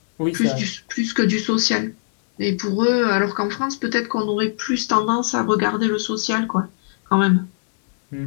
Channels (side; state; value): right; silent; digital silence